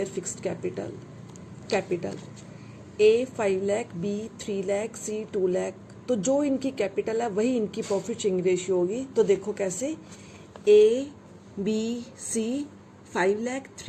fixed capital. A 5 lakh, B 3 lakh, C 2 lakh. तो जो इनकी capital है वही इनकी profit sharing ratio होगी. तो देखो कैसे A, B, C 5 lakh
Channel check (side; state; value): both; identical; correlation 1.00